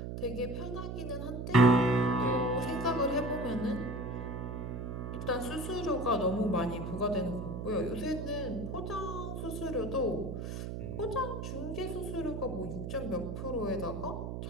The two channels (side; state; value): right; noise; hum, 5 dB below the sound